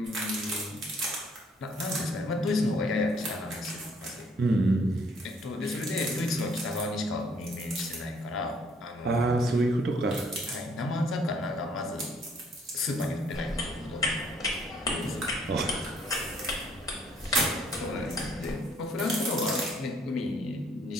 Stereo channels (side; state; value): both; normal; correlation 0.63